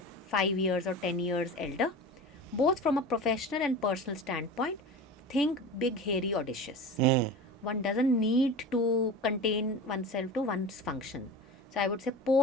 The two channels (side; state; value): both; normal; correlation 0.32